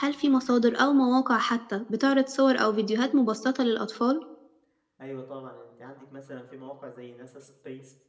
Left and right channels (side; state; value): both; identical; correlation 1.00